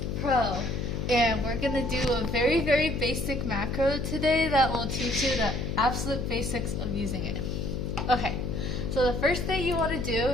Pro. And we're going to do a very, very basic macro today that will teach you the absolute basics of using it. Okay, so the first thing you want to do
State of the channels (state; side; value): noise; left; hum, 3 dB below the sound